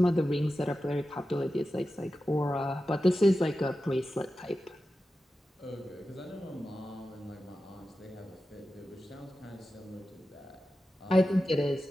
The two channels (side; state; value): both; normal; correlation 0.93